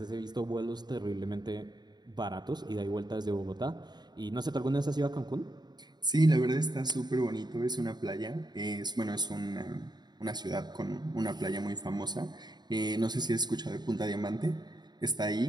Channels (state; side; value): late; left; 0.20 ms